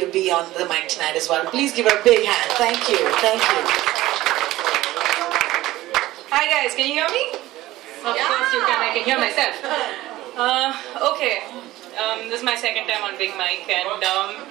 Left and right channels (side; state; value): left; quieter; 16.6 dB